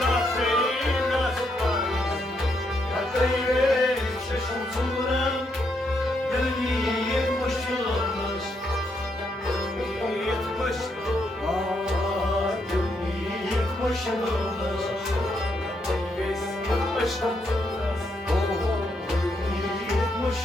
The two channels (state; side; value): normal; both; correlation 0.77